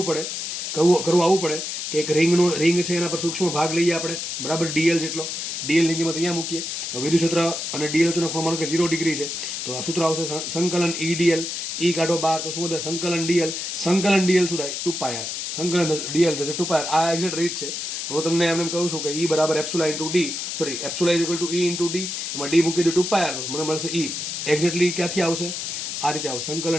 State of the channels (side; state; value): left; noise; hiss, 4 dB below the sound